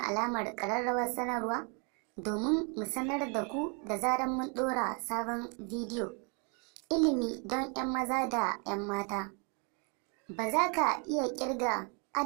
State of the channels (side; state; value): left; quieter; 35.9 dB